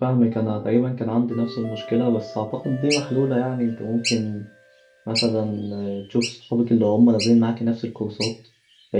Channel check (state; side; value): identical; both; correlation 1.00